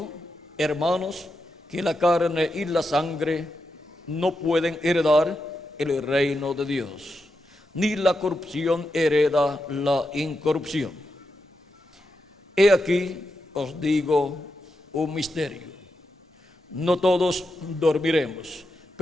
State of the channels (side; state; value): both; normal; correlation 0.87